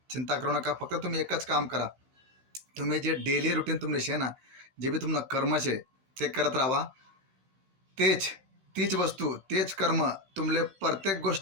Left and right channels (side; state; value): left; late; 15 ms